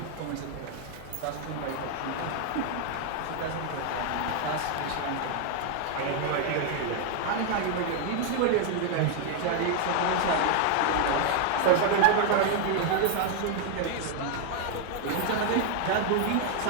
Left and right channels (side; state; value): both; different; correlation 0.00